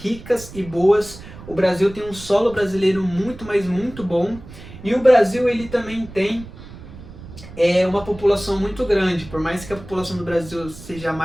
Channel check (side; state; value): right; noise; rumble, 16 dB below the sound